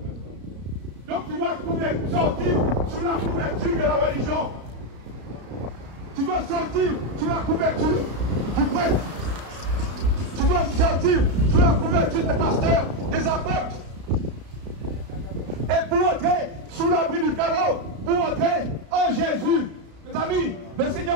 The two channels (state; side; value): late; left; 33 ms